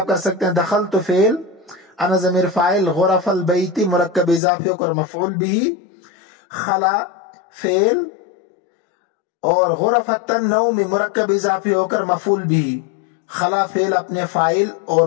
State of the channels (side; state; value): right; drops out; at 4.4 s